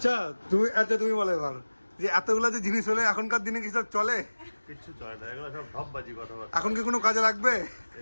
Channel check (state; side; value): inverted; both; correlation -1.00